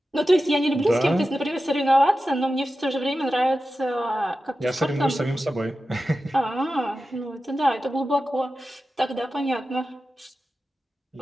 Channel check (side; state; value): both; normal; correlation 0.93